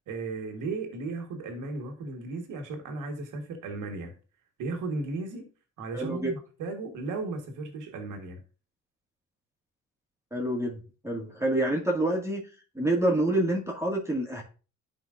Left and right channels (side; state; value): both; normal; correlation 0.55